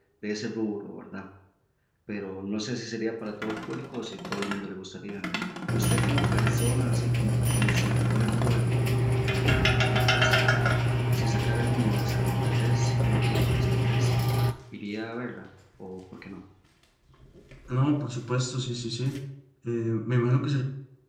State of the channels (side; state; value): both; identical; correlation 1.00